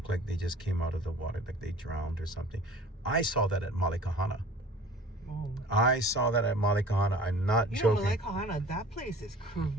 like they just came out of the water, like they drowned or something. I saw that at Malikahana. I saw that at Malikahana. I'm not joking. Malikahana, that place is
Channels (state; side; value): normal; both; correlation 0.45